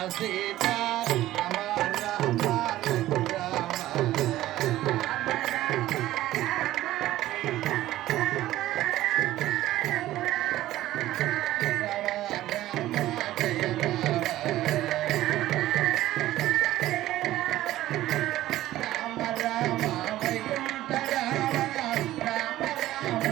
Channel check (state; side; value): quieter; left; 15.0 dB